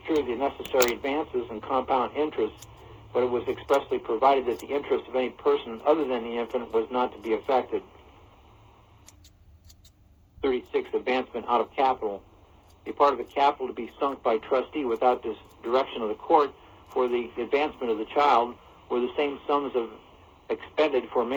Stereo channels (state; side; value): identical; both; correlation 1.00